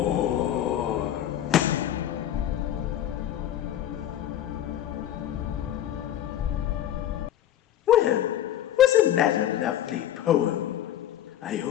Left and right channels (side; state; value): right; quieter; 11.5 dB